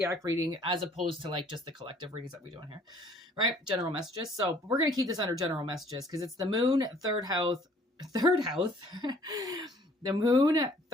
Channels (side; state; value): both; normal; correlation 0.58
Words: reading as opposed to just the collective readings that we're doing here, right? General messages. So we're going to keep this under general messages because it's the moon, third house, the moon,